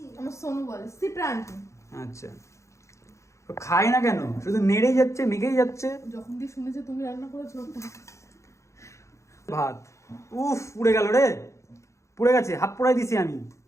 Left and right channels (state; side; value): late; right; 0.14 ms